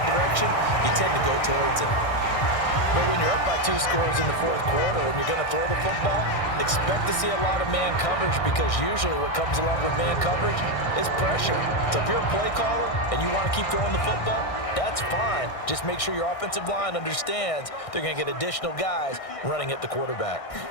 direction, you tend to go towards him. But when you're up by 2 scores in the fourth quarter and you're going to throw the football, expect to see a lot of man coverage, because usually what comes along with man coverage is pressure. So if you're a play caller and you want to keep throwing the football, that's fine. Just make sure your offensive line understands they're going to get additional guys running at the quarterback.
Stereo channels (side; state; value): right; late; 1.6 ms